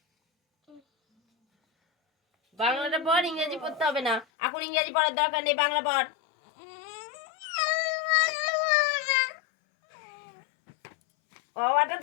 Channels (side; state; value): right; drops out; at 4.2 s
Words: বাংলাটা পড়, ইংরেজি পড়তে হবে না। এখন ইংরেজি পড়ার দরকার নেই, বাংলা পড়। অটা